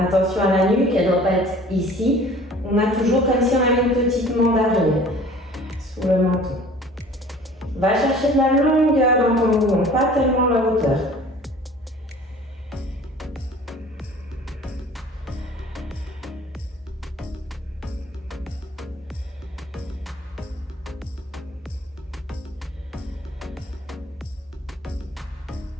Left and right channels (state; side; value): normal; both; correlation 0.48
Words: à la nuque, elle ne doit pas être ici. On a toujours comme si on avait une petite mandarine sous le menton. Va chercher de la longueur dans ton mouvement, pas tellement la hauteur.